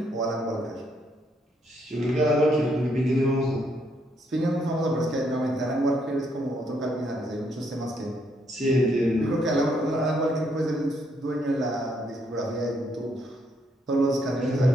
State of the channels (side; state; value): both; normal; correlation 0.73